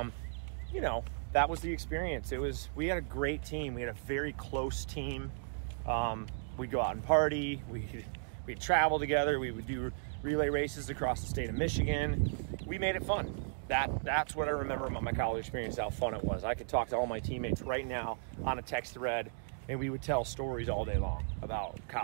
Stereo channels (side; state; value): left; silent; digital silence